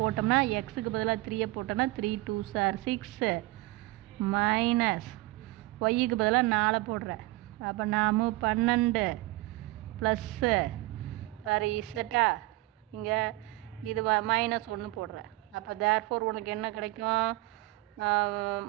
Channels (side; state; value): left; quieter; 20.3 dB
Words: எக்ஸுக்கு பதிலாக 3 போட்டோம்னா 3 × 2 = 6 மைனஸ் ஒய்க்கு பதிலாக 4 போடுறேன். அப்போ நாம 12 ப்ளஸ்ஸு வேறு இசட்டா இங்கே இது -1 போடுறேன். அப்போ தேர்ஃபோர் உனக்கு என்ன கிடைக்கும்,